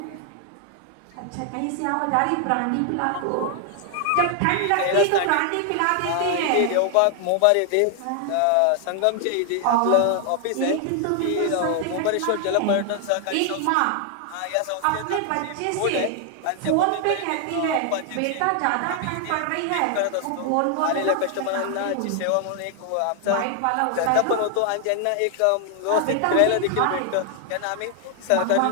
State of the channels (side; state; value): both; different; correlation 0.00